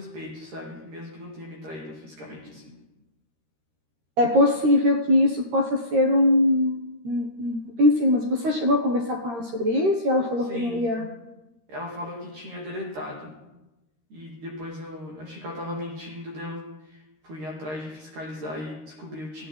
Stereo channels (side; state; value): left; late; 13 ms